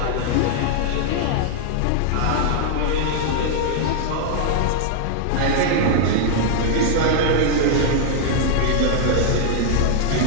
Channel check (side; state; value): both; different; correlation -0.01